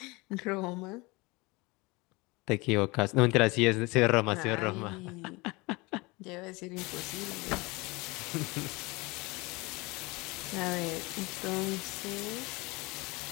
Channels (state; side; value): quieter; right; 24.6 dB